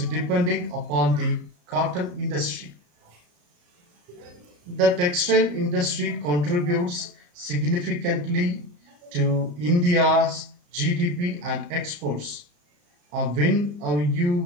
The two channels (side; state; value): left; late; 34 ms